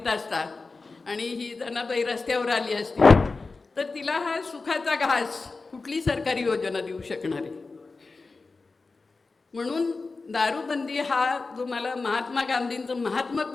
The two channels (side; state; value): right; quieter; 3.9 dB